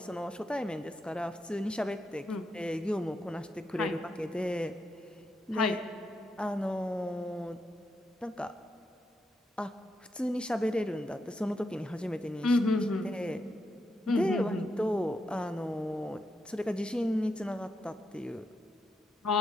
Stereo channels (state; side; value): normal; both; correlation 0.83